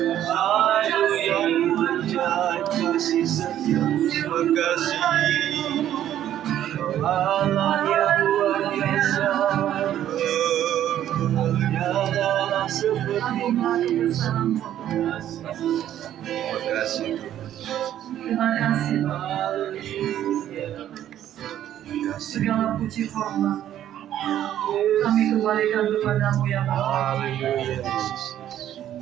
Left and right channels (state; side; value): quieter; left; 11.5 dB